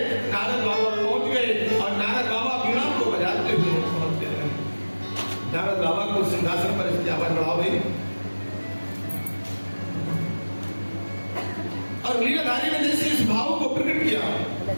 नारद बाबा पहुंच गए और नारद बाबा वीणा को बजाते हुए पहुंचते रहे। नारद बाबा को सिंहासन पर इसकी आवाज बढ़ाओ भाई। और लीलाधारी ने जैसे इस भाव को प्रकट किया,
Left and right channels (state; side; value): inverted; both; correlation -1.00